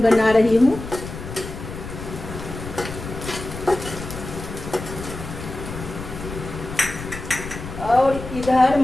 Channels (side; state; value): left; noise; rumble, 10 dB below the sound